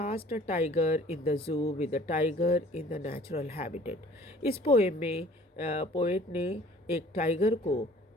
a tiger in the जू with a tiger in the natural habitat. इस पोएम में पोएट ने एक टाइगर को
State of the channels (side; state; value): both; normal; correlation 0.51